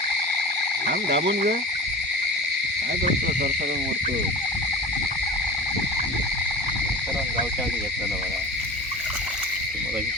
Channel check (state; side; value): normal; both; correlation 0.34